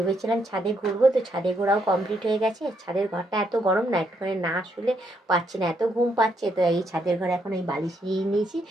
ছাদে ঘুরবো, তো ছাদে ঘোরাও কমপ্লিট হয়ে গেছে। ছাদের ঘরটা এত গরম না, একটুখানি না শুলে পাচ্ছি না, এত ঘুম পাচ্ছে। তো এই ছাদের ঘরে এখন এই বালিশ নিয়ে নিয়েছি,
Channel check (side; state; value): both; normal; correlation 0.76